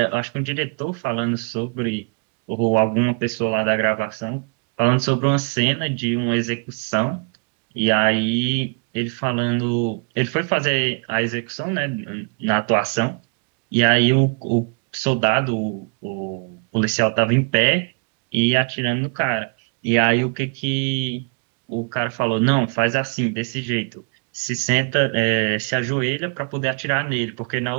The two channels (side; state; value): left; quieter; 36.9 dB